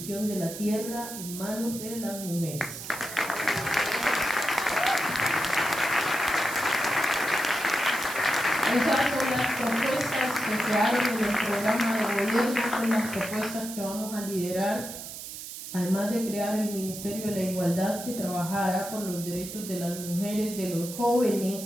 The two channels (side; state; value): right; noise; hiss, 10 dB below the sound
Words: de la tierra en manos de las mujeres. Esas son las propuestas que quedaron en el programa de gobierno, son las propuestas que vamos a liderar, además de crear el Ministerio de la Igualdad, que trabajará por los derechos de las mujeres, de los